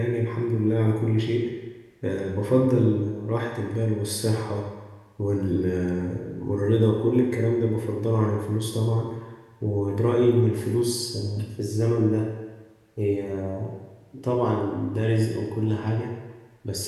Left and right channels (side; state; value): both; identical; correlation 1.00